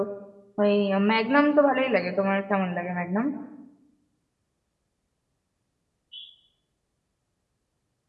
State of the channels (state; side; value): identical; both; correlation 1.00